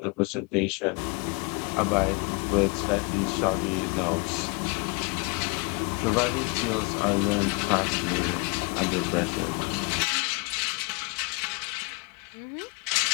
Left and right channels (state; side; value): quieter; right; 31.6 dB